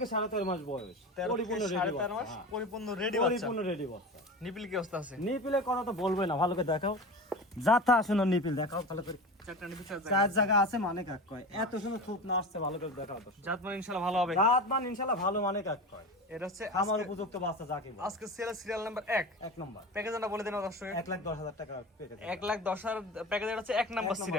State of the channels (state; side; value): normal; both; correlation 0.30